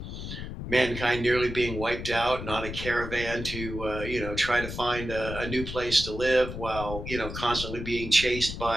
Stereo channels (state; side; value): noise; left; rumble, 8 dB below the sound